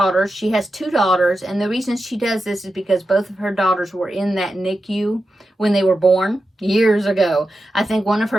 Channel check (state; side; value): normal; both; correlation 0.90